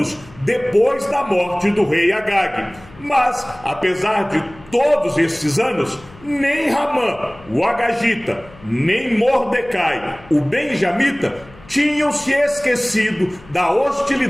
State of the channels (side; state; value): left; noise; hum, 23 dB below the sound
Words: depois da morte do rei Agag. Mas, apesar de todos esses anos, nem Ramã, o agagita, nem Mordecai, o benjamita, tinham se esquecido da